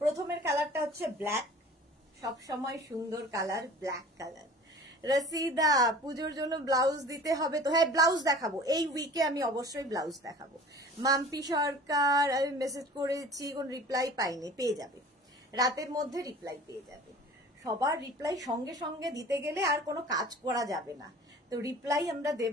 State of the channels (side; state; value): both; normal; correlation 0.43